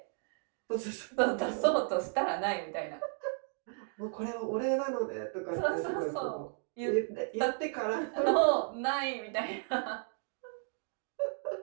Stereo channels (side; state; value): left; silent; 55 dB below the other